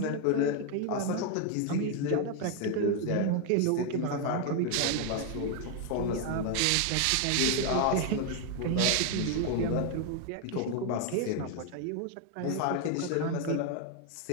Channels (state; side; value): different; both; correlation 0.00